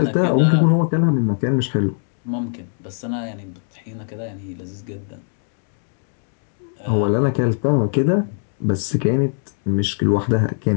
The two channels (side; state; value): right; silent; 63 dB below the other